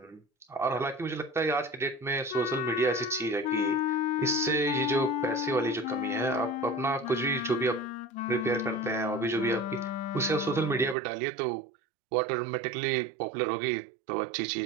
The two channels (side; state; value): left; drops out; at 11.0 s